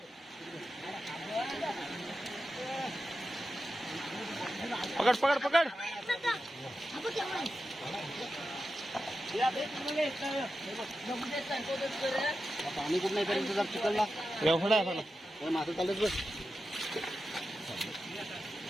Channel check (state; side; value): normal; both; correlation 0.91